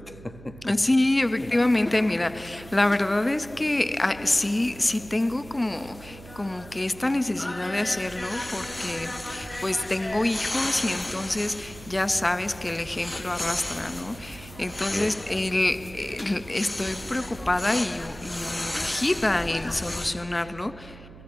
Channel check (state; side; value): noise; right; hum, 18 dB below the sound